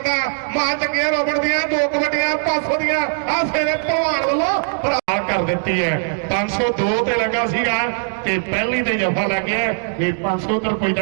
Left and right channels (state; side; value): silent; left; digital silence